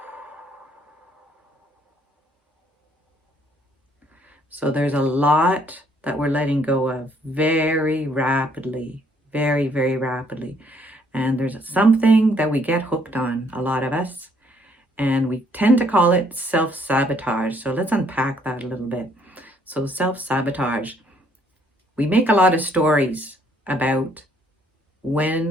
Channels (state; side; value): normal; both; correlation 0.66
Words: So there's a lot that we're letting go of very rapidly, very, very rapidly. And there's something that we get hooked on, a lot of us, and we tend to call it self-sabotage. So let's unpack that a little bit. So self-sabotage, we make a lot of stories about